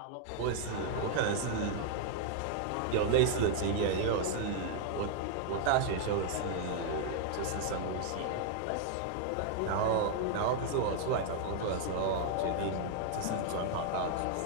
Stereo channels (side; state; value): both; different; correlation 0.00